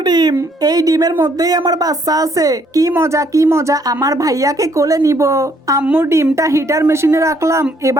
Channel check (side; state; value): both; normal; correlation 0.67